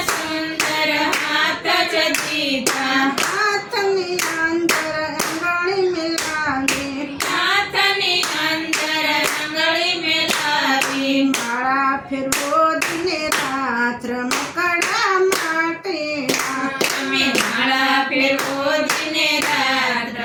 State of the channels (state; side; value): identical; both; correlation 1.00